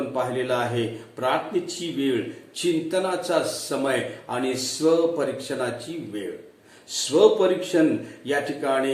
पाहिलेलं आहे प्रार्थनेची वेळ, चिंतनाचा समय आणि स्वपरीक्षणाची वेळ. स्वपरीक्षण या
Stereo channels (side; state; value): both; identical; correlation 1.00